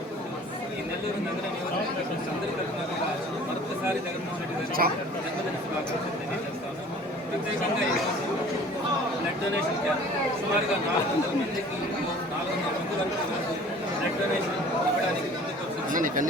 ఈ నెల్లూరు నగర నియోజకవర్గం అందరి తరఫున మరొకసారి జగన్మోహన్ రెడ్డి గారు జన్మదిన శుభాకాంక్షలు తెలియజేస్తాను. ప్రత్యేకంగా ఈరోజు బ్లడ్ డొనేషన్ క్యాంప్ సుమారుగా 400 మందికి 400 మంది వరకు బ్లడ్ డొనేషన్ ఇవ్వడానికి ముందుకు వచ్చింది.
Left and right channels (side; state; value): both; normal; correlation 0.48